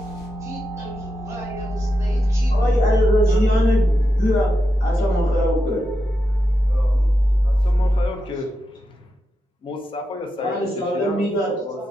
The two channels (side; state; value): both; normal; correlation 0.87